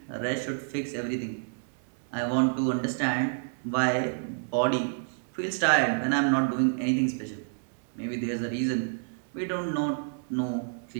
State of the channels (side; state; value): left; silent; 59 dB below the other